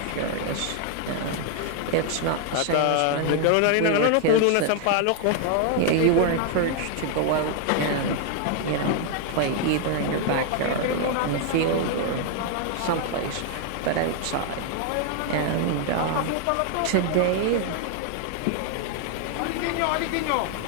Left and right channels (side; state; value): both; different; correlation 0.00